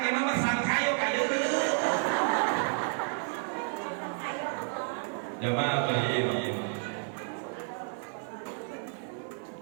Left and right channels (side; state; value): left; silent; 57 dB below the other